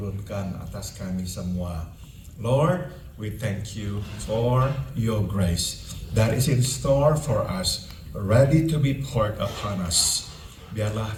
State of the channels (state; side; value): identical; both; correlation 1.00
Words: atas kami semua. Lord, we thank you for your grace that is in store for us, ready to be poured upon us. Biarlah